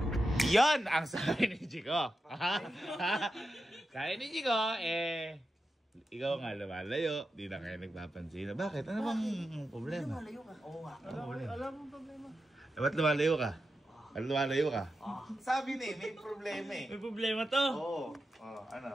Yan ang sabi ni Jico. Sabi ni Jico, ikaw nga lumalayo, di na kayo nagpapansin. Bakit? Ano bang problema? Malayo ka. Oo nga. Alam mo problema. Ba't lumalayo ka? Ba't lumalayo ka? Sabi ni, may problema eh. May problema to. Oo.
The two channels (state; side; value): normal; both; correlation 0.89